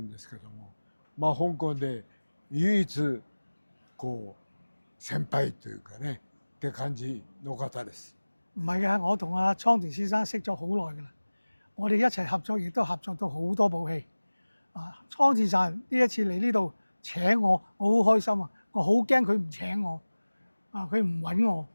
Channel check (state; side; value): inverted; both; correlation -1.00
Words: んですけども、香港で唯一こう先輩というかねって感じの方です。唔係嘅，我同阿倉田先生識咗好耐㗎啦。我哋一齊合作，亦都合作到好多部戲。倉田さん呢一次嚟呢度請我，我好開心啊！我好驚佢唔請我，佢唔揾我，